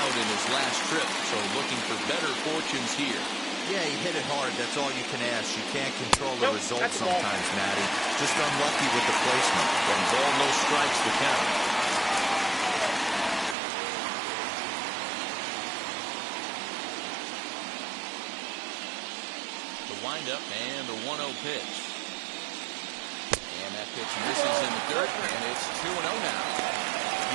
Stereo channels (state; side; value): drops out; left; at 13.6 s